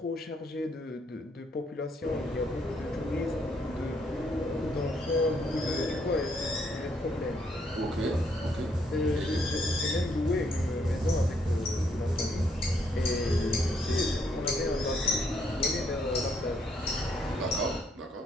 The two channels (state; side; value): normal; both; correlation 0.72